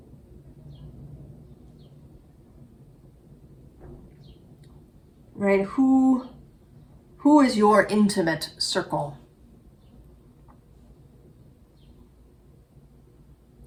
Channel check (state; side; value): identical; both; correlation 1.00